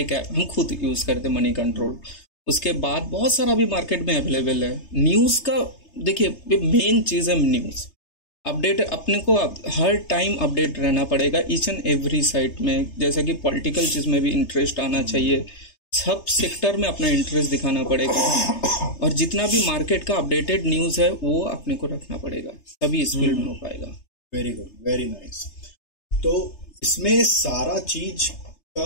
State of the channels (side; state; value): right; late; 3.3 ms